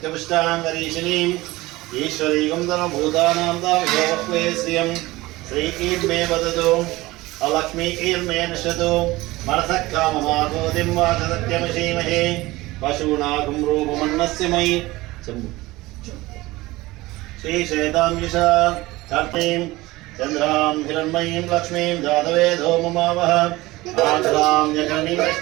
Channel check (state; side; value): quieter; left; 19.7 dB